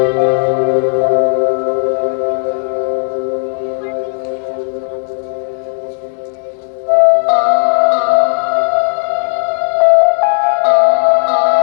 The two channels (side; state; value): right; silent; digital silence